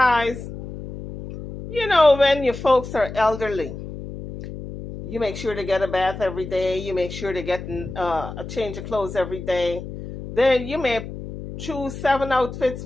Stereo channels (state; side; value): noise; left; hum, 10 dB below the sound